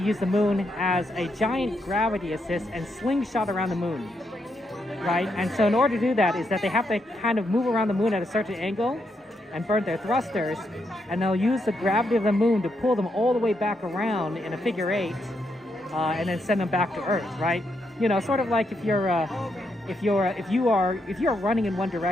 use the moon as a giant gravity assist and slingshot around the moon, right? And so in order to do that is that they have to kind of move around the moon at a certain angle and burn their thrusters, and they'll use the gravity of the moon to pull them all the way back around in a figure eight, and then send them back to Earth, right? You know, sort of like if you are running in one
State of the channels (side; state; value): both; normal; correlation 0.79